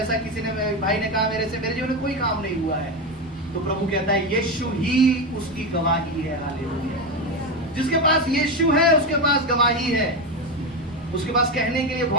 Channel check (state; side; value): normal; both; correlation 0.14